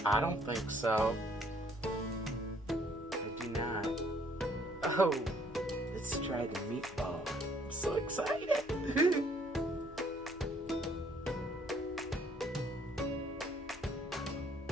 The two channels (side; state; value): both; normal; correlation 0.63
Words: I don't think so. I do not. Oh, let's try the meatball. I'm so excited.